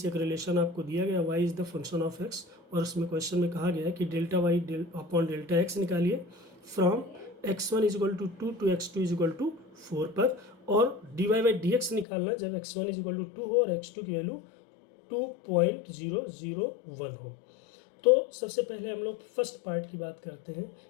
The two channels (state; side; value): drops out; right; at 12.1 s